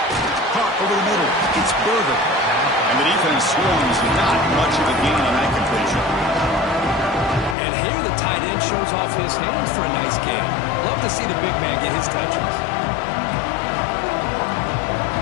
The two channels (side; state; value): right; drops out; at 7.6 s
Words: Caught over the middle. It's Berger. And the defense swings not much of a gain on that completion. And here the tight end shows off his hands for a nice game. Love to see the big man get his touches.